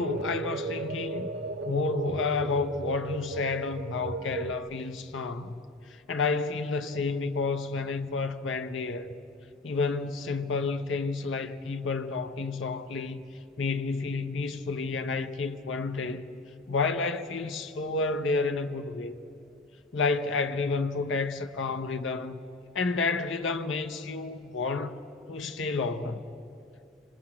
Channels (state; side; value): quieter; right; 3.2 dB